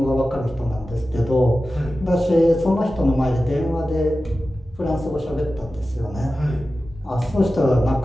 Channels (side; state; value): both; normal; correlation 0.94